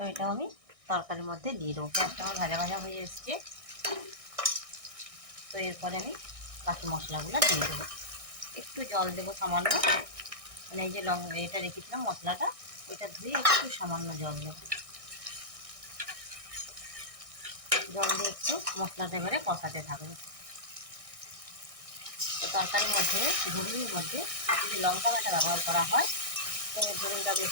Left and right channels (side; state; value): left; late; 1.6 ms